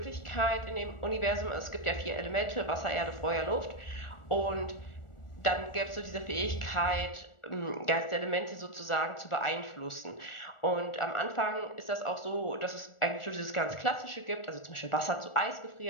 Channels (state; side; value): late; right; 1.4 ms